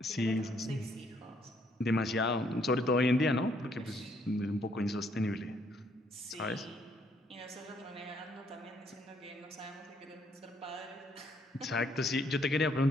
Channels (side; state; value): both; normal; correlation 0.69